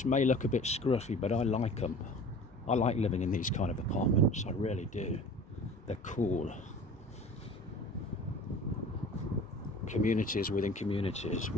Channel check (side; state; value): both; normal; correlation 0.42